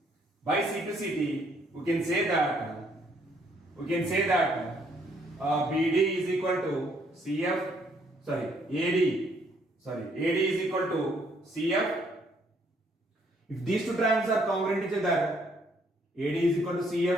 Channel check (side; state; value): both; normal; correlation 0.68